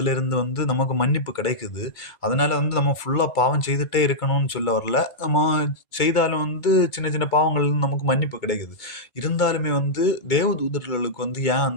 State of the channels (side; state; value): right; late; 2.2 ms